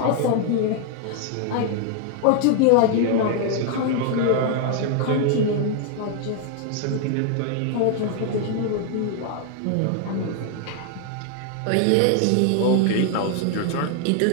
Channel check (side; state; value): both; different; correlation 0.00